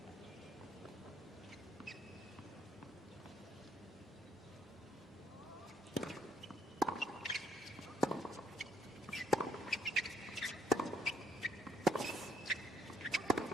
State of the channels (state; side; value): normal; both; correlation 0.68